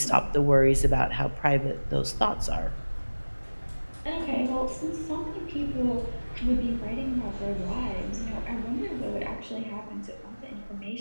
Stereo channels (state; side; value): inverted; both; correlation -1.00